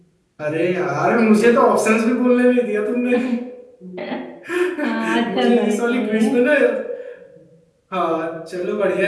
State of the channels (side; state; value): both; identical; correlation 1.00